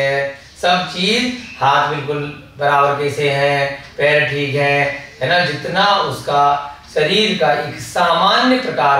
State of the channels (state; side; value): identical; both; correlation 1.00